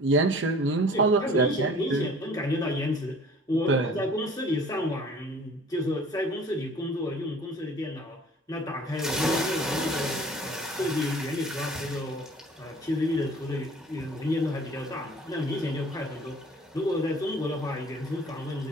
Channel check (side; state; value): both; normal; correlation 0.49